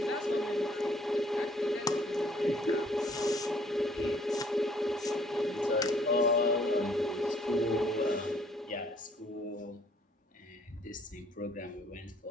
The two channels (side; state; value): both; normal; correlation 0.61